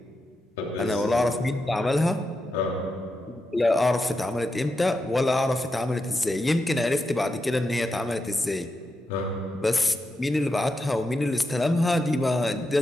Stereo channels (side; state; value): both; normal; correlation 0.87